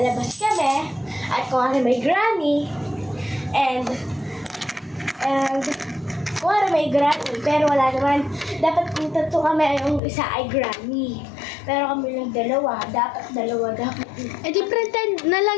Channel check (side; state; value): right; drops out; at 10.0 s